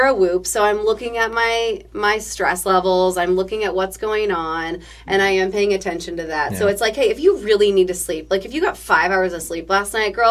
a Whoop, so I'm looking at my stress levels, I'm looking at what's going on, and I am paying attention to that. So Yeah. it's like, hey, if you really need to sleep, like if you got 5 hours of sleep last night,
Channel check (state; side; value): identical; both; correlation 1.00